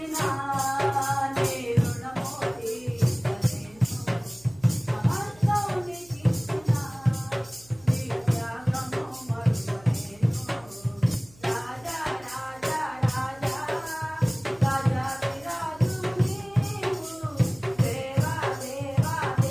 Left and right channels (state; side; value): noise; right; hum, 25 dB below the sound